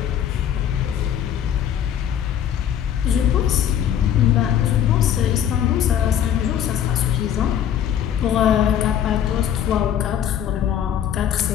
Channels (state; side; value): quieter; right; 9.7 dB